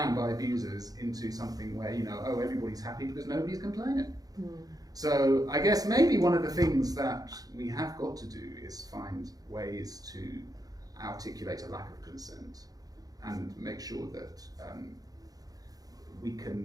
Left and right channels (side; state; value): left; late; 0.18 ms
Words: by abusers into something where, oh, everybody's happy because nobody's complaining. So I guess maybe one of the things that we have got to do is find ways to articulate a lack of consent and make sure that